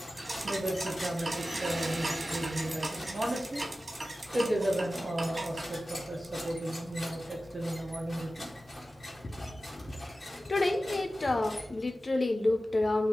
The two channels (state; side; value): normal; both; correlation 0.95